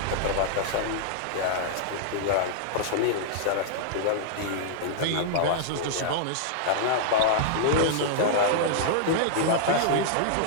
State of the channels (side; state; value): both; different; correlation -0.02